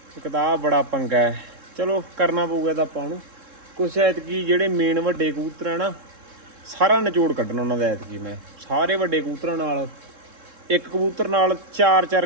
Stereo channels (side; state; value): left; late; 3.7 ms